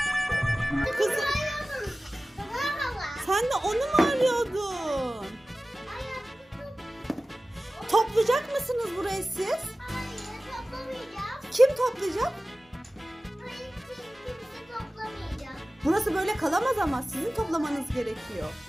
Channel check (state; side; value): normal; both; correlation 0.97